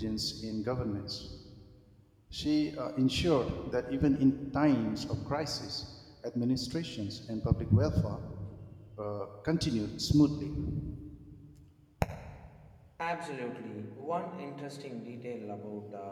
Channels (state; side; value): identical; both; correlation 1.00